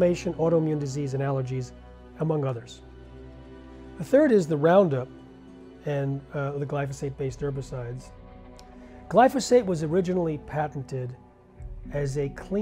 autoimmune disease, and allergies, among others. The third is the Roundup and the glyphosate-based herbicides. Glyphosate was originally patented as a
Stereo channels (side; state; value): both; identical; correlation 1.00